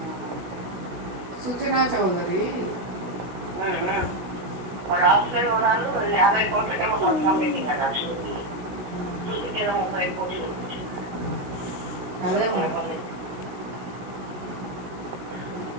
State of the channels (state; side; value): late; left; 16 ms